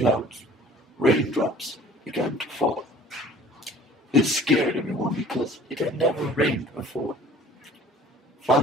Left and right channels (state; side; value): normal; both; correlation 0.50